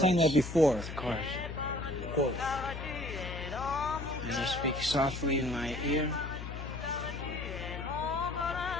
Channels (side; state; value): left; noise; hum, 8 dB below the sound